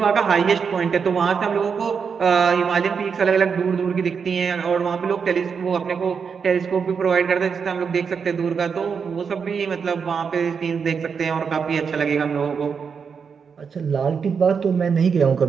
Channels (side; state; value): left; quieter; 6.1 dB